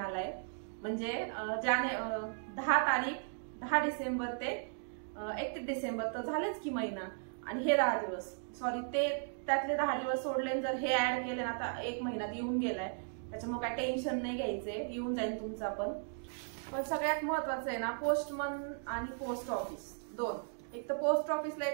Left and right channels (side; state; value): left; silent; digital silence